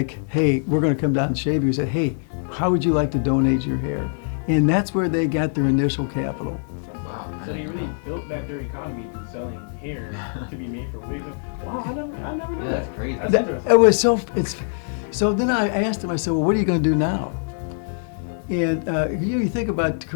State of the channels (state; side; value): silent; right; digital silence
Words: hey, we're going to come down and shave you. We said, hey, how would you like to donate your hair? And that's where they got their initial capital. So they really built back their economy through selling hair to be made for wigs. Wow, I never knew that. That's crazy. That's interesting. It was so then I asked him, I said, well, what are you going to do now? And you think about